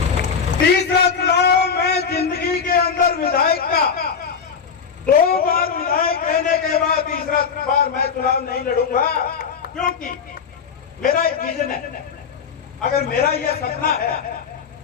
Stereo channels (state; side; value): quieter; right; 6.3 dB